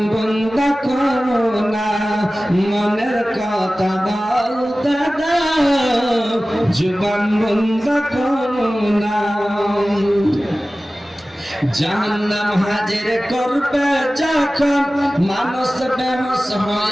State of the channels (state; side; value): normal; both; correlation 0.97